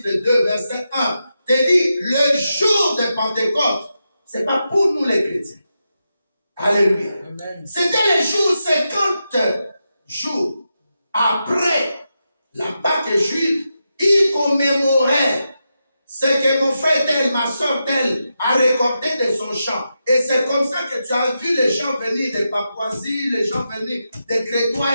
2, verset 1, te dit le jour de Pentecôte, ce n'est pas pour nous les chrétiens. Alléluia. Amen. C'était le jour 50 jours après la Pâque juive, ils commémoraient ce que mon frère tel, ma soeur tel a récolté de son champ. Et c'est comme ça que tu as vu les gens venir de Papouasie, les gens venir de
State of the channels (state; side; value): inverted; both; correlation -0.88